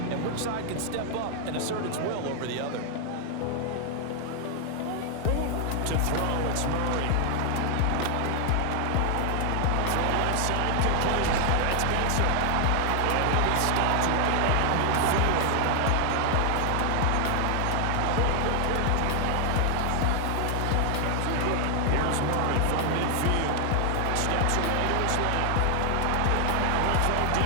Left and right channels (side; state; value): both; different; correlation 0.00